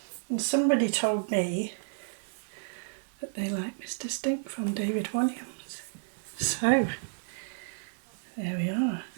And somebody told me that they like Mr. Stink from David Walliams. So there we are.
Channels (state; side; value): silent; left; 57 dB below the other